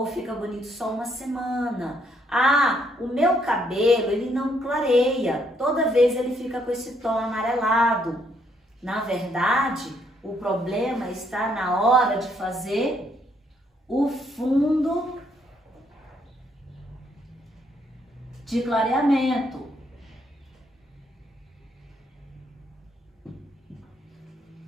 fica bonito só uma semana. Ah, o meu cabelo, ele não clareia, toda vez ele fica com esse tom amarelado. Na verdade, o problema está na hora de fazer o fundo de clareamento.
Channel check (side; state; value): both; normal; correlation 0.71